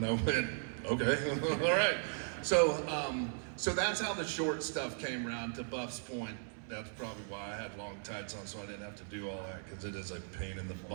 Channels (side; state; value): left; silent; 53 dB below the other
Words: I went, "Okay, all right." So so that's how the short stuff came around. To Buff's point, that's probably why I had long tights on, so I didn't have to do all that, because it is a pain in the